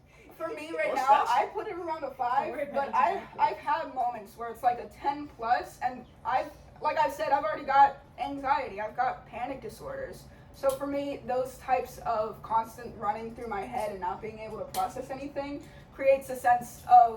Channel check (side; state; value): both; identical; correlation 1.00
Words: For me right What's now, that? I put it around a 5, Don't worry but about it. I've had moments where it's like a 10 plus, and like I said, I've already got anxiety. I've got panic disorders. So for me, those types of constant running through my head and not being able to process anything creates a sense